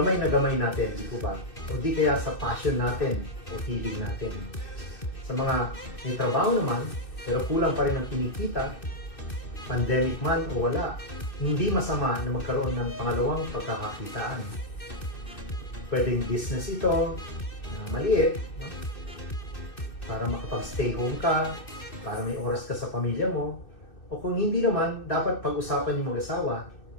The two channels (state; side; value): late; right; 2.6 ms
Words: na gamay natin, di po ba? O di kaya sa passion natin o hilig natin. Sa mga may trabaho naman, pero kulang pa rin ang kinikita, pandemic man o wala, hindi masama na magkaroon ng pangalawang pagkakakitaan. Pwedeng business ito, na maliit, no? Para makapag-stay home ka, para may oras ka sa pamilya mo, o kung hindi naman, dapat pag-usapan yung mag-asawa